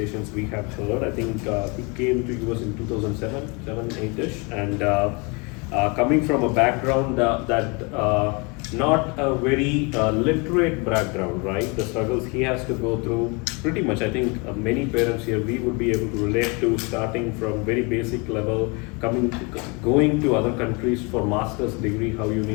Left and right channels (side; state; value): right; quieter; 30.3 dB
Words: we have heard. I think he came to US in 2007, 8-ish, and coming from a background that not a very literate background, right? The struggles he has to go through, pretty much, I think many parents here, we would be able to relate to, starting from very basic level, going to other countries for master's degree, how you